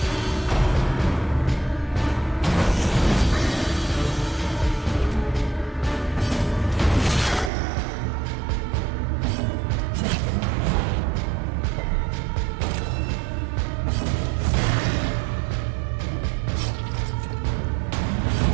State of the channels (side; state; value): left; drops out; at 7.5 s